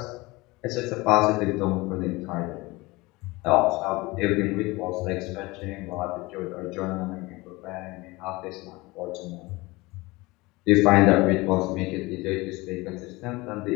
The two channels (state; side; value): quieter; right; 22.4 dB